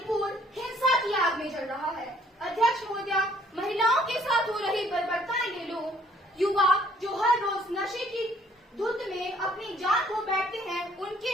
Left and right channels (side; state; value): both; normal; correlation 0.62